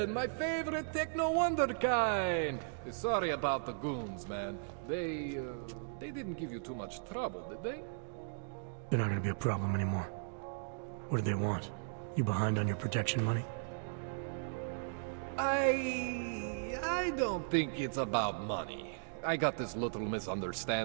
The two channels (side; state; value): left; silent; digital silence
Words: my favorite techno wonderkind. Sorry about the goons, man. They didn't give you too much trouble, did they? They're not gonna be a problem anymore. What do they want? You behind on your protection money? I don't think it's about money. I got this little